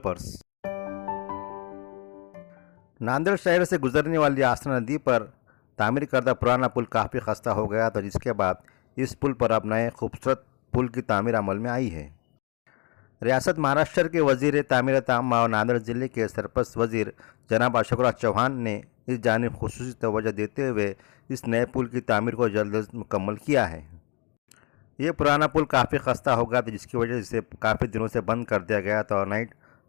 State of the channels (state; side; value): quieter; right; 31.3 dB